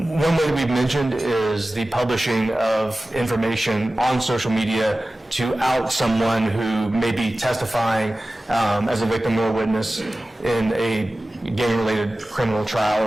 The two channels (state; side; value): normal; both; correlation 0.96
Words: way that we've mentioned is the publishing of information on social media to out someone who may be testifying as a victim or a witness in a gang-related criminal